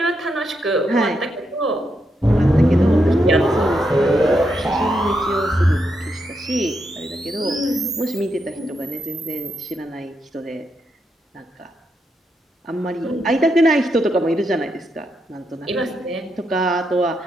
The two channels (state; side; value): normal; both; correlation 0.82